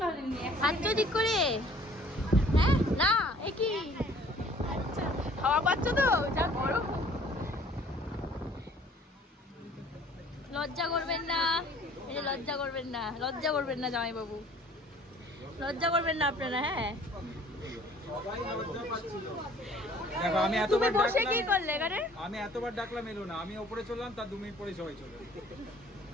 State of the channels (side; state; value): both; normal; correlation 0.54